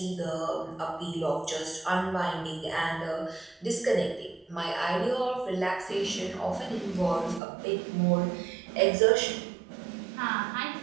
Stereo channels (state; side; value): drops out; left; at 7.4 s